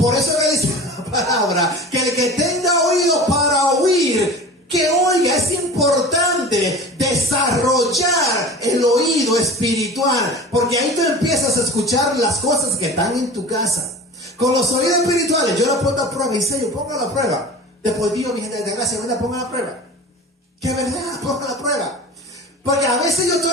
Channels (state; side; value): normal; both; correlation 0.36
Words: eso que dice la palabra, que el que tenga oído para oír, que oiga. Es importante desarrollar el oído espiritual, porque ahí tú empiezas a escuchar las cosas que están en tu casa. Con los oídos espirituales, yo lo pongo a prueba, en serio, pongo a la prueba. Después Dios, mi gente de gracia, venga, ponga la prueba. Que verdad, ponga la prueba. Porque a veces yo